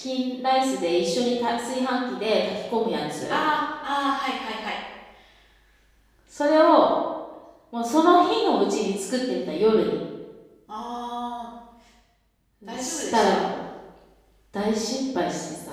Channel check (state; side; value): identical; both; correlation 1.00